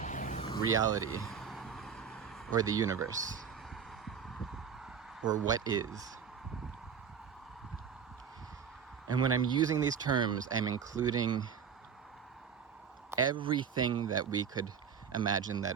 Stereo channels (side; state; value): left; quieter; 7.1 dB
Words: reality, or the universe, or what is. And when I'm using these terms, I'm including everything that we could imagine